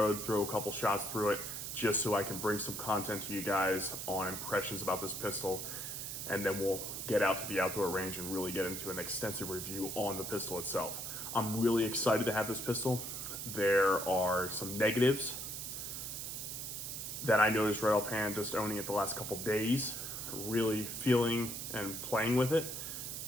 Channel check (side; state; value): right; noise; hiss, 6 dB below the sound